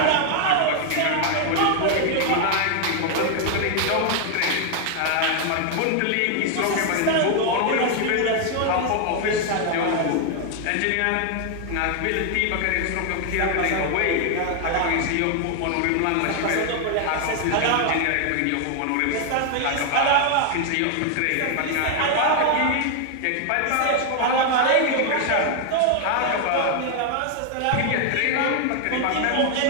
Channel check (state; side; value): different; both; correlation 0.00